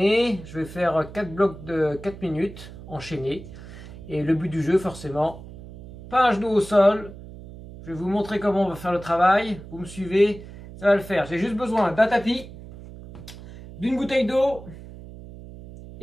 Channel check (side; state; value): right; noise; hum, 15 dB below the sound